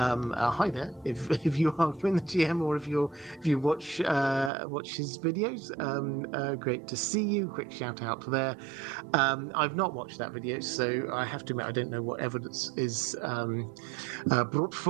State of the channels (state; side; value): drops out; left; at 4.5 s